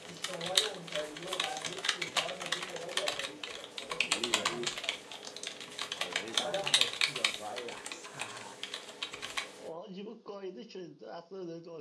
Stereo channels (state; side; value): identical; both; correlation 1.00